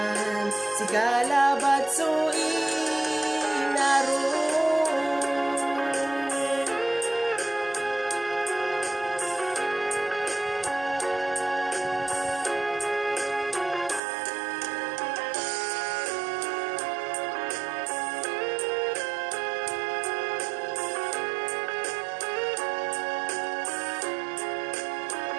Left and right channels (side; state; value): left; drops out; at 14.0 s